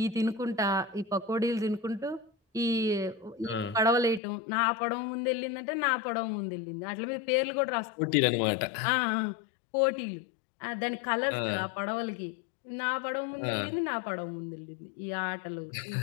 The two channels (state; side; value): drops out; right; at 4.2 s